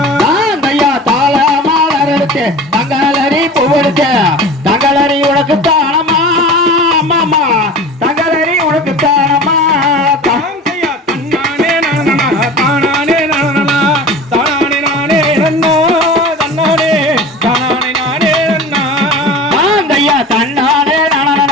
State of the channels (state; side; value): normal; both; correlation 0.36